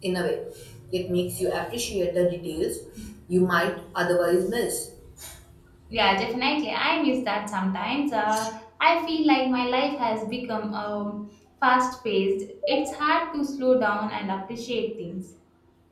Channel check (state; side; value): identical; both; correlation 1.00